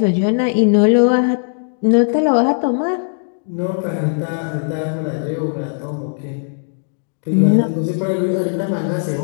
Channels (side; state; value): right; silent; digital silence